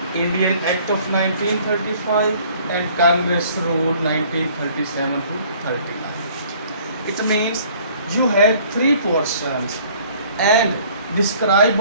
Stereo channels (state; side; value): inverted; both; correlation -0.56